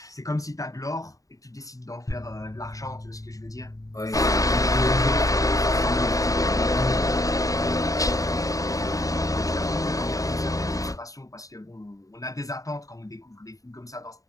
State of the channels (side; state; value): right; late; 0.16 ms